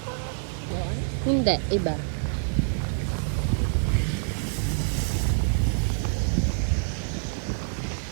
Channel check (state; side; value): silent; left; digital silence